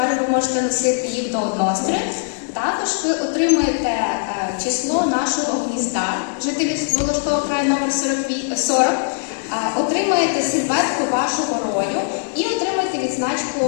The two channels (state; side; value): silent; right; digital silence